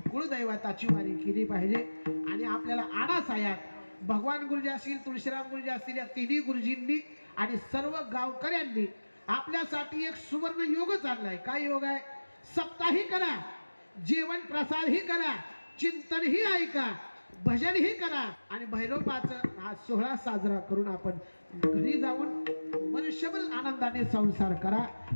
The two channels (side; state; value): both; inverted; correlation -1.00